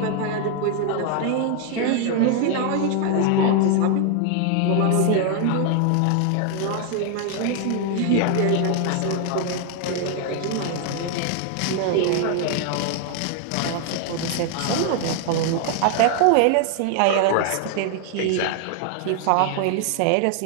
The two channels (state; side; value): different; both; correlation 0.00